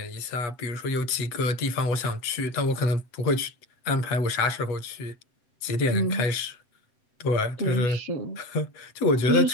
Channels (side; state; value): right; late; 7.7 ms